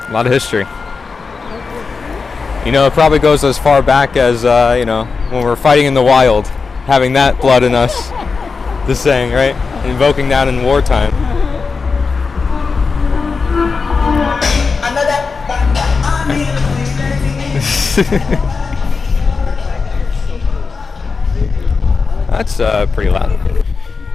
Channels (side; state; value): right; quieter; 4.7 dB